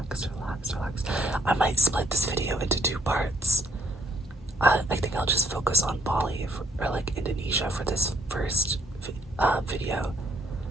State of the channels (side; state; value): both; normal; correlation 0.70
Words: relax, relax. I might split this video into two parts. I think I'll just focus on Bali or like Indonesia for this first video,